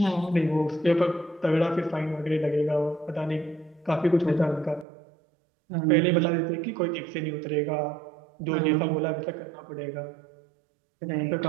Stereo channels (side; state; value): left; drops out; at 4.9 s